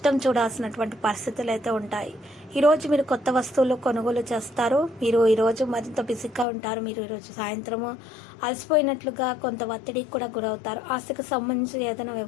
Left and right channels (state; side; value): drops out; right; at 6.5 s